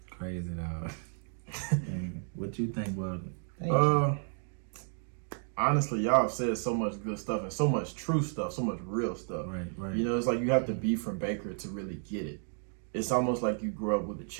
Crazy, dog. And what you think about it? Thank you. Honestly, y'all have said so much good stuff and so much true stuff, so much real stuff. Right, right. You know, it's like you have to be from Baker to really get it. It's almost like you grew up with a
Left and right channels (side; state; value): left; silent; 56 dB below the other